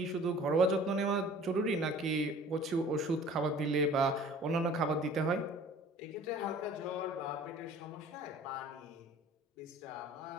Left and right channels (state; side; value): normal; both; correlation 0.48